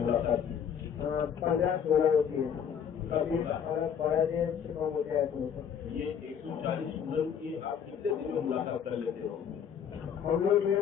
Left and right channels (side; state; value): right; quieter; 8.0 dB